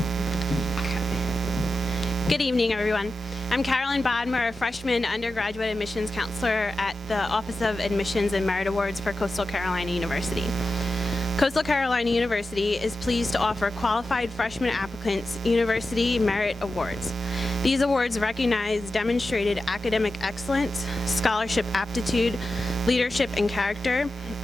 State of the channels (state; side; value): normal; both; correlation 0.92